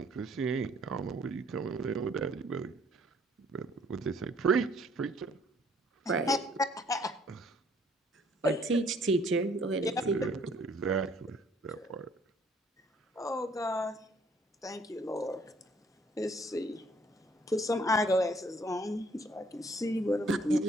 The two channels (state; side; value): normal; both; correlation 0.61